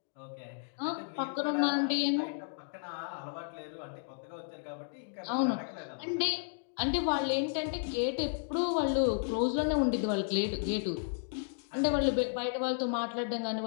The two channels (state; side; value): silent; right; digital silence